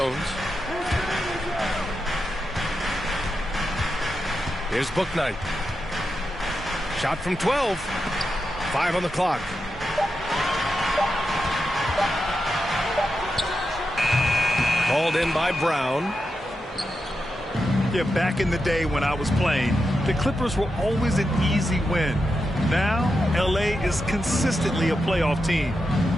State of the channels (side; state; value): both; normal; correlation 0.87